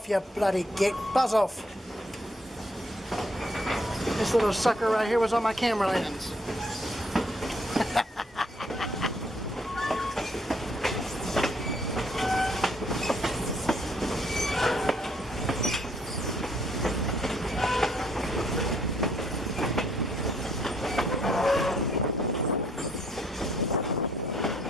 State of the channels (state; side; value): normal; both; correlation 0.68